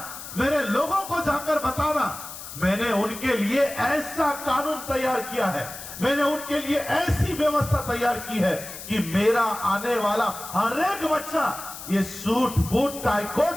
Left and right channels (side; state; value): left; noise; hiss, 12 dB below the sound